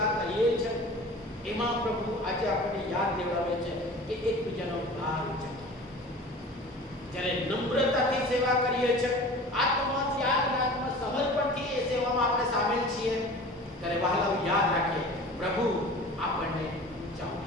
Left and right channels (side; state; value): both; normal; correlation 0.40